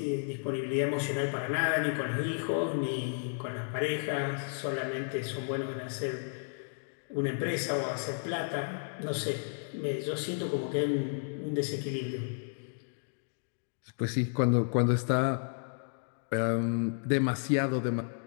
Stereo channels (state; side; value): silent; right; digital silence